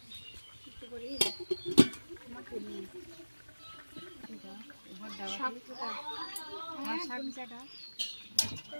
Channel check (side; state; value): both; inverted; correlation -1.00